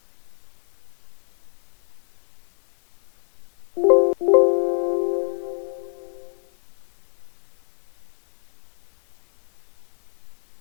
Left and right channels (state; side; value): silent; right; 61 dB below the other